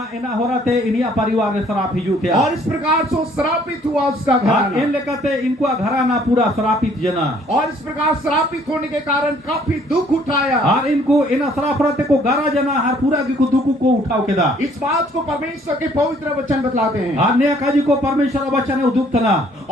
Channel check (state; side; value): normal; both; correlation 0.61